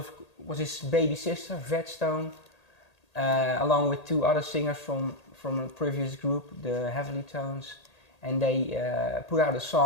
his baby sister, Vet Stone, along with two other singers from a previous group, the Heavenly Tones. And they put out a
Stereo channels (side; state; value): right; late; 1.8 ms